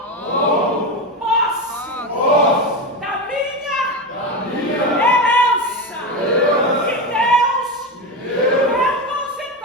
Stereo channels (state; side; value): normal; both; correlation 0.17